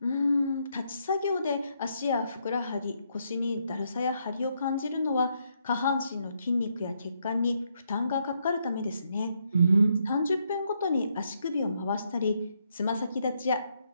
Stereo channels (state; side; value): inverted; both; correlation -0.76